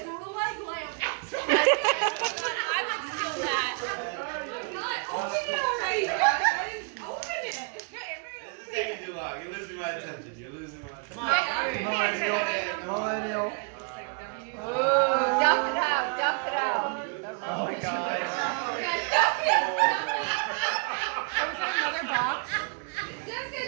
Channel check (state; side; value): quieter; left; 39.0 dB